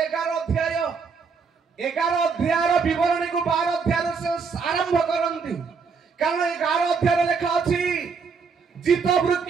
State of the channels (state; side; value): quieter; left; 5.3 dB